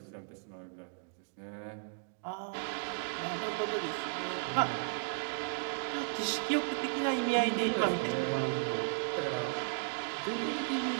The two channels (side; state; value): left; silent; digital silence